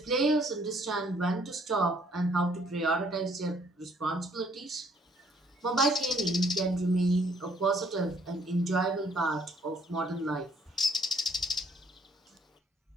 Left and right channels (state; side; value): normal; both; correlation 0.64